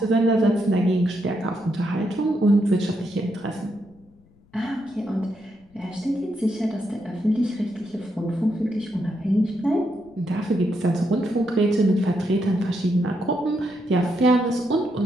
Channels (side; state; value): left; noise; rumble, 30 dB below the sound